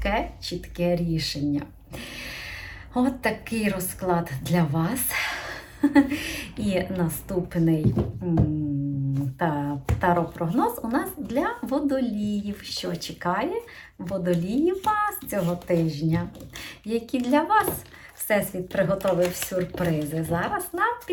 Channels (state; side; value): identical; both; correlation 1.00